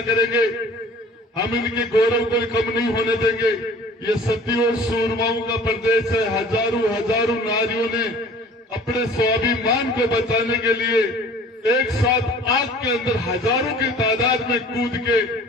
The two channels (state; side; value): normal; both; correlation 0.47